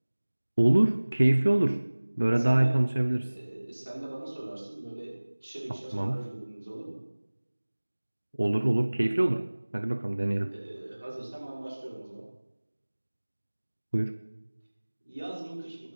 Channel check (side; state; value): both; inverted; correlation -1.00